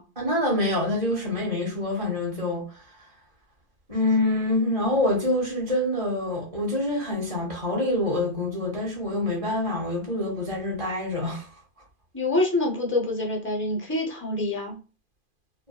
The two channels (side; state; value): left; late; 2.4 ms